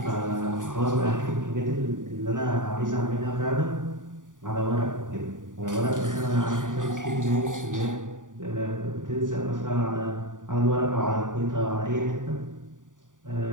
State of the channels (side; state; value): left; late; 0.88 ms